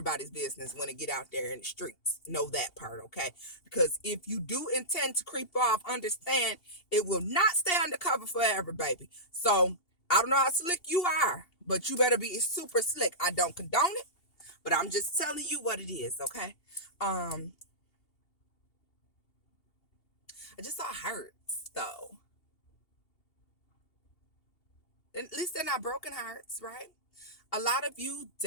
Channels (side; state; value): right; late; 2.8 ms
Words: business when they get out there in the streets. Know that part, okay? Because if you do intend to creep off, understand it will not stay undercover forever, baby. So I don't know how slick you are, but you better be super slick. I don't condone it, but I'm just telling you what it is, okay? I just saw hearts though. At least they're not broken hearts, right? A lot of you